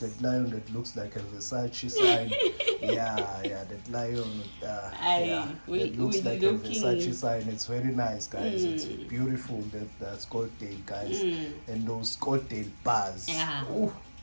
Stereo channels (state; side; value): inverted; both; correlation -1.00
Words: lion that looks like a Versace sign. That lion. That looks like a Versace sign. It's very nice, guys. It's beautiful. That Scottsdale, guys, and those Scottsdale bars. Ooh,